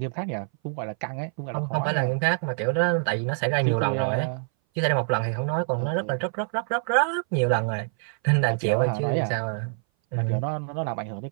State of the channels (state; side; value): silent; left; 59 dB below the other